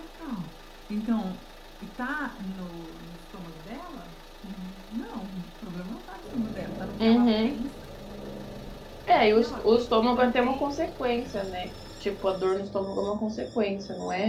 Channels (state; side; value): identical; both; correlation 1.00